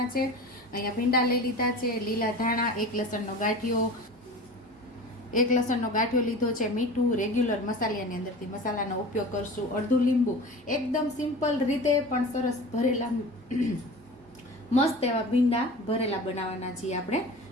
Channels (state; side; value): normal; both; correlation 0.36